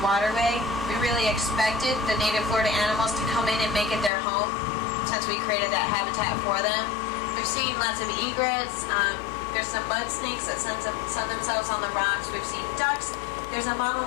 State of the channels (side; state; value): right; drops out; at 4.1 s